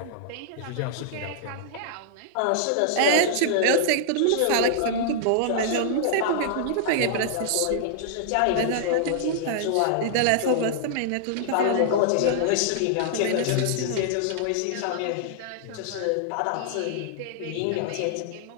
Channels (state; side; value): different; both; correlation -0.01